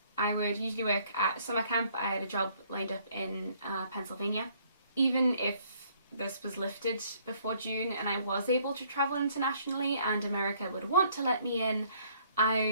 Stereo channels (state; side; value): inverted; both; correlation -0.63